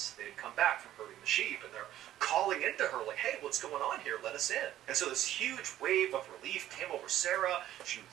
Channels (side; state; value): left; quieter; 12.8 dB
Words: They had come back from herding the sheep, and they're calling into her like, hey, what's going on here? Let us in. And so this huge wave of relief came over Sarah. She